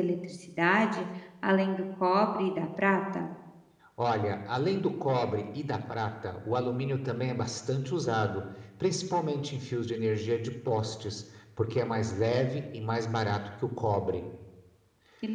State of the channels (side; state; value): both; identical; correlation 1.00